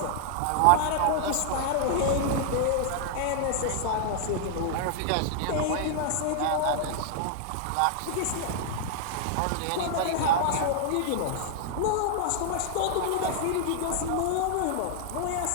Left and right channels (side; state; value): both; different; correlation 0.00